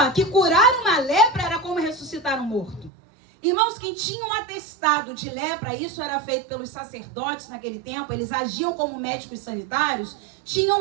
que curar uma lepra era como ressuscitar um morto. Irmãos, quem tinha um atestado de lepra, isso era feito pelos sacerdotes naquele tempo, eles agiam como médicos sanitários, tinham um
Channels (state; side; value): drops out; left; at 2.9 s